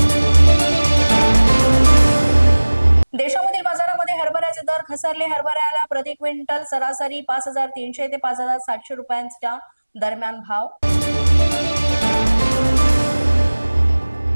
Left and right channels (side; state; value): both; inverted; correlation -1.00